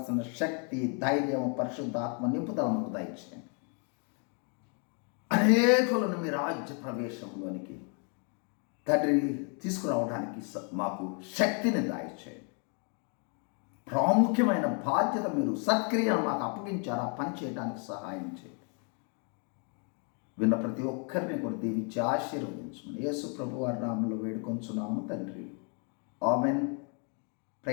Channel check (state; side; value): quieter; right; 38.8 dB